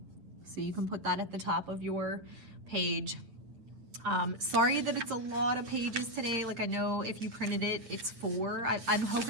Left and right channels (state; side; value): late; left; 8.7 ms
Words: So you can put that at the top of your page. Sorry that it's a lot of pages today. Like I know if you printed it, it's 4. I'm